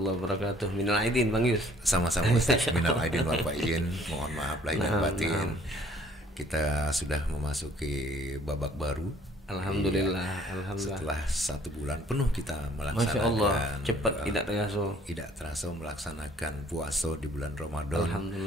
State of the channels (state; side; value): normal; both; correlation 0.59